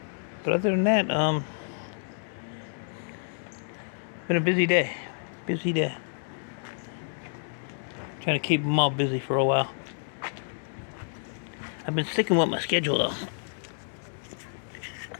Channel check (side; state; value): right; silent; digital silence